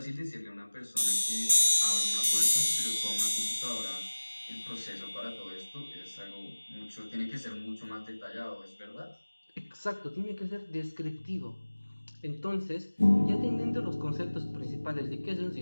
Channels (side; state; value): both; inverted; correlation -1.00